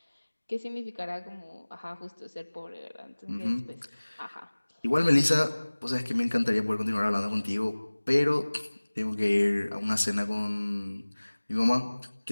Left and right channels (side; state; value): both; inverted; correlation -1.00